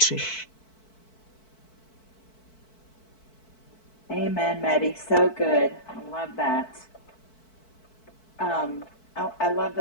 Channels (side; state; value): right; late; 4.6 ms